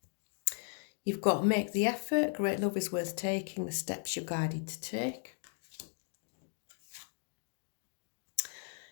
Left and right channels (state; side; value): silent; right; 53 dB below the other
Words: you've got Make the Effort, Great Love is Worth Taking, the steps you're guided to take.